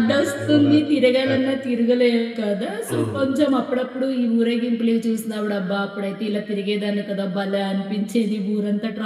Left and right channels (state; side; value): identical; both; correlation 1.00